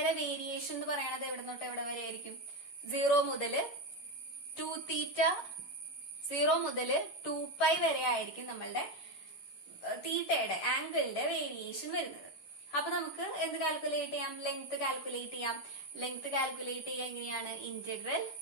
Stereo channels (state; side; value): late; right; 10 ms